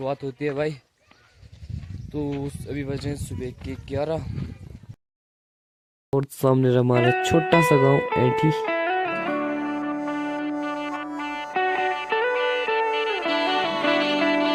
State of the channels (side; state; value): both; identical; correlation 1.00